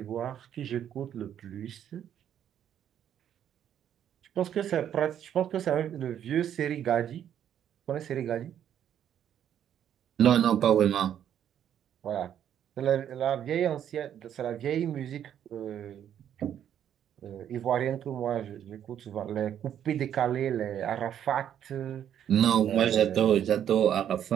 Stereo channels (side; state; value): left; quieter; 9.9 dB